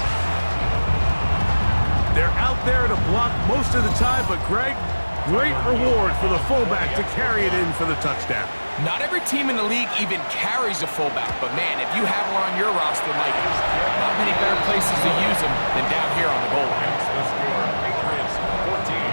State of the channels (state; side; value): inverted; both; correlation -1.00